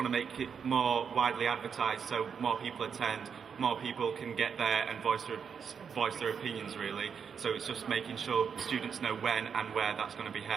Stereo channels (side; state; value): left; quieter; 6.8 dB